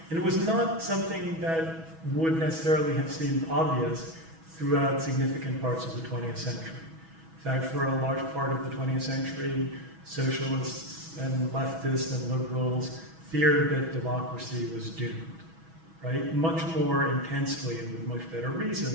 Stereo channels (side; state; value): left; late; 6.1 ms